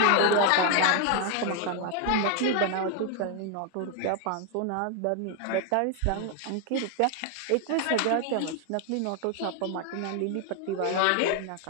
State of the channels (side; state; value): both; different; correlation 0.01